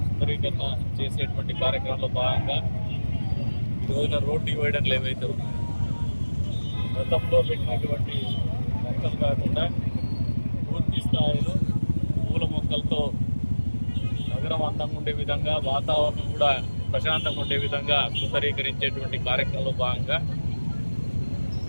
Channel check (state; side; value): inverted; both; correlation -1.00